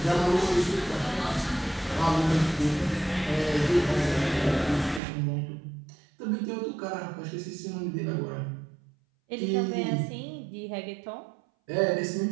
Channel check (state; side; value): drops out; left; at 5.0 s